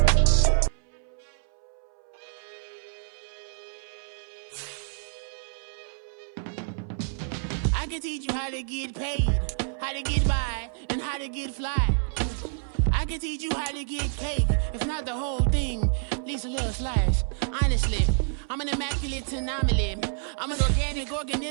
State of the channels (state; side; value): silent; left; 59 dB below the other